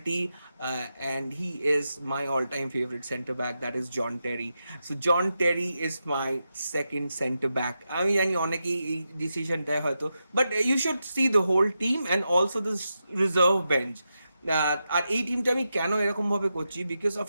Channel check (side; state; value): both; inverted; correlation -0.88